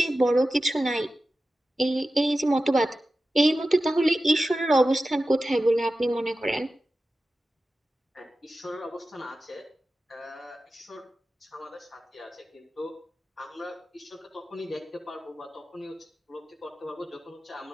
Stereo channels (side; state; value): both; normal; correlation 0.94